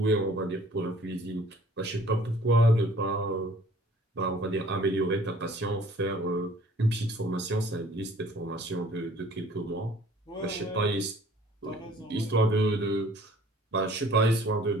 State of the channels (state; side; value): normal; both; correlation 0.53